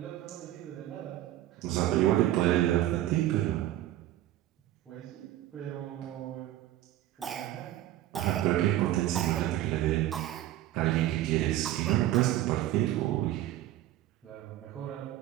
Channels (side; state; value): left; quieter; 13.8 dB